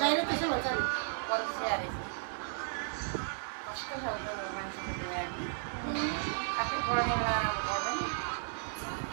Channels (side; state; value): left; silent; digital silence